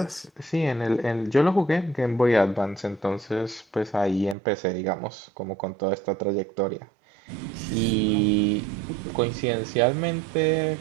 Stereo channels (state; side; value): drops out; left; at 4.4 s